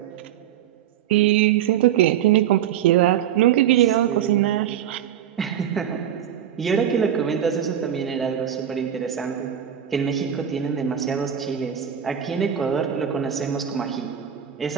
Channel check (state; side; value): quieter; left; 9.8 dB